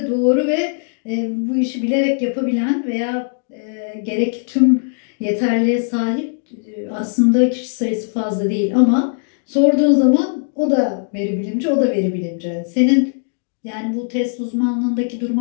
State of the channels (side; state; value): right; silent; digital silence